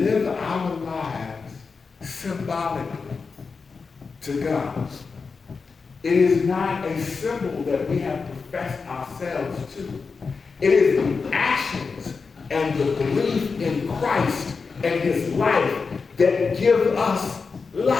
our lives symbolically to God. It is not a symbol that we have professed ourselves to. It is the actions and the belief in Christ and his life that give us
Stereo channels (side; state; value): right; quieter; 4.8 dB